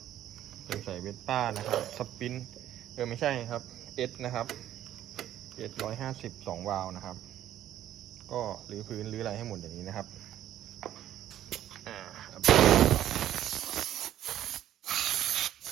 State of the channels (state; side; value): quieter; left; 12.1 dB